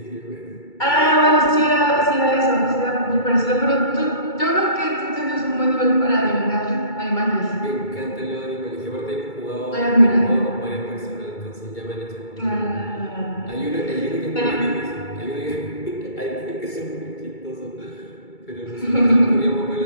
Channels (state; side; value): late; right; 2.3 ms